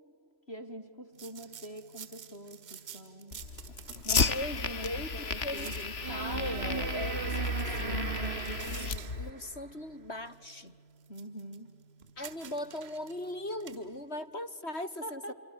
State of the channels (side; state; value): right; late; 3.0 ms